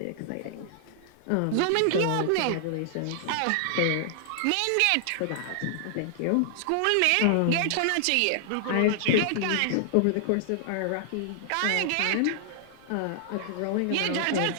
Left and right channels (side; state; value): both; different; correlation -0.01